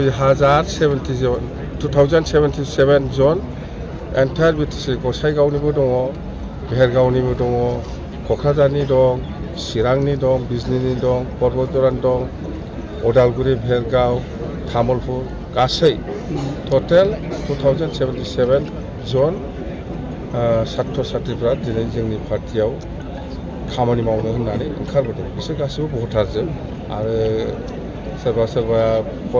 2077 जन एन्टायार BTC गसाइगावनिबो दङ भेरगावनिबो दङ क'क्राझारनि दं चिरांनि दं बिजनीनि दं बरबदरानि दं उदालगुरि भेरगाव तामुलपुर गासै टटेल 2077 जन सात्र साथ्रिफ्रा दिनै जोंनि पार्टियाव खामानि मावनो होननानै ओंखारबोदों बिसोर गासैबो भटारजों आरो सोरबा सोरबा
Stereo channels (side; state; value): both; identical; correlation 1.00